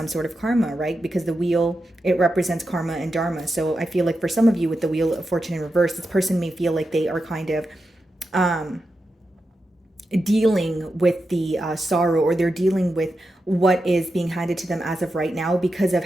sort of karma, right? Because the wheel, it represents karma and dharma. So I feel like for some of you with the Wheel of Fortune in reverse, this person may feel like they are kind of dealing with the sorrow, or they're dealing with what is being handed to them as of right now because of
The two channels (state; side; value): normal; both; correlation 0.89